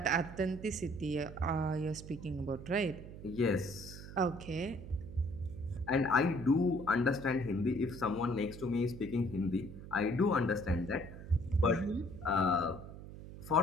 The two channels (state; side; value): noise; right; hum, 13 dB below the sound